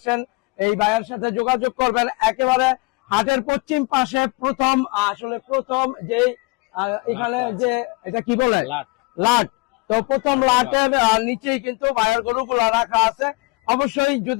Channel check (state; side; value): quieter; right; 27.6 dB